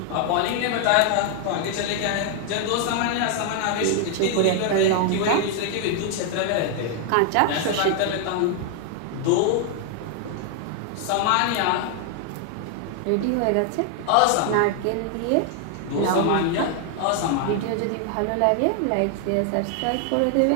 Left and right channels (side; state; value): both; different; correlation 0.00